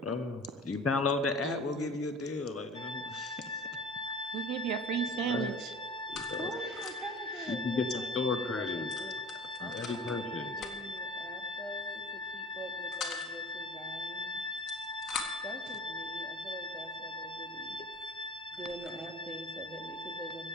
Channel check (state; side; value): normal; both; correlation 0.42